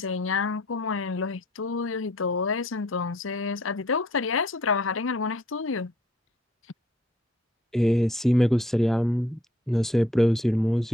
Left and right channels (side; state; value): both; normal; correlation 0.62